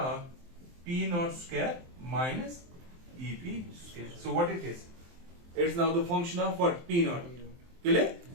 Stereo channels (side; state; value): left; late; 23 ms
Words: p naught square minus ep square. So what it is? It's now the function of what? P naught. Clear?